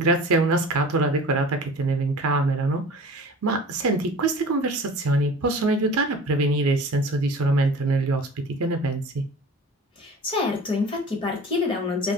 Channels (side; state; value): both; normal; correlation 0.41